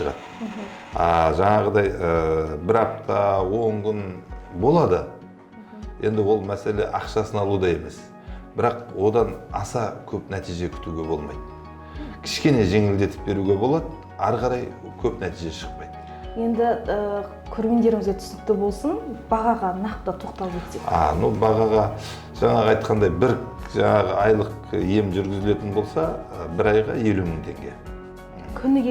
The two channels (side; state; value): both; identical; correlation 1.00